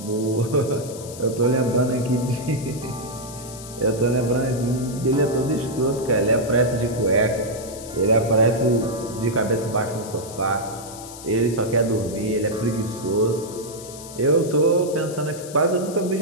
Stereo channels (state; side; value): noise; left; hiss, 15 dB below the sound